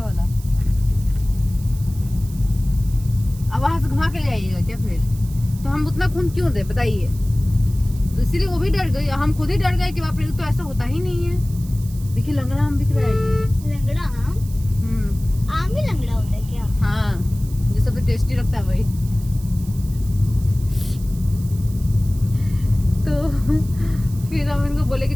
वाला। अब वहां से घुमा के जाइएगा क्या फिर? तो हम उतना खून क्यों दे बताइए? तो इसीलिए वो भी डर गई, हम खुद ही डर गए कि बाप रे, तो ऐसा होता ही नहीं है। देखिए लंगड़ा आम बिक रहा है। लंगड़ा आम? आम ही लंगड़ा होता है क्या? हाँ, जो सबसे टेस्टी लगता है वही। तो फिर हम इनको बोले कि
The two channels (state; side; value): noise; right; hiss, 20 dB below the sound